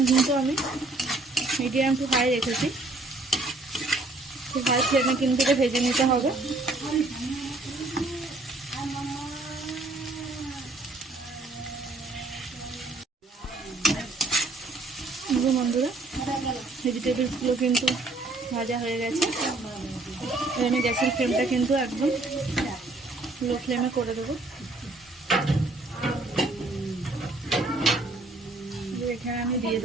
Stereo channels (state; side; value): quieter; left; 3.0 dB